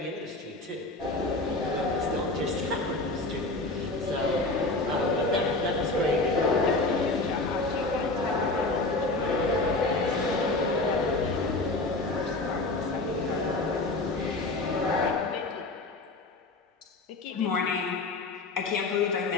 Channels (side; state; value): right; quieter; 3.1 dB